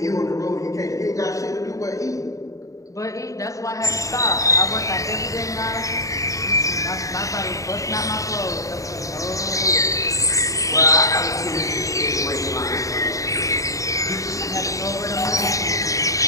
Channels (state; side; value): late; right; 0.16 ms